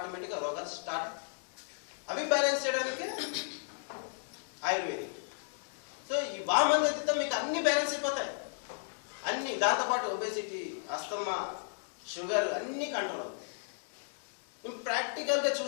రోగాలు స్టార్ట్ అవుతాయి. అవి బ్యాలెన్స్ చేయడానికి ఆయుర్వేదిక్. సో ఈ వామనోతితో మీకు అన్ని బ్యాలెన్స్ అయిపోతాయి. అన్ని దాంతోపాటు ఒబేసిటీ, అస్తమా, షుగర్ అన్నీ కంట్రోల్ అవుతాయి. నేను ప్రాక్టికల్గా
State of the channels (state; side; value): silent; right; digital silence